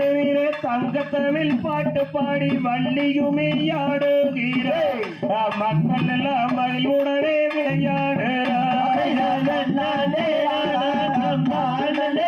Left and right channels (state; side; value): identical; both; correlation 1.00